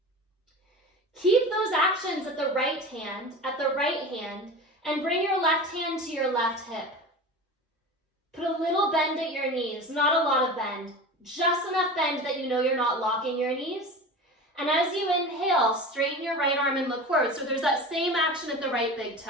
Keep those actions at the right hand, and bring your left hand to your left hip. Put a little bend at your knees, not a lot of bend, just enough bend that you know you're not locking your knees. And as you inhale, straighten your right arm and look forward. So there's that same action at the right big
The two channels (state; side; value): normal; both; correlation 0.32